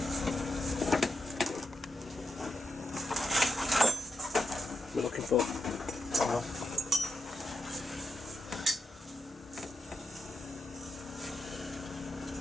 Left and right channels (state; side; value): normal; both; correlation 0.85